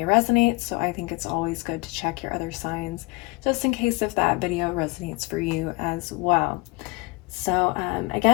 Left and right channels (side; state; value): right; quieter; 24.8 dB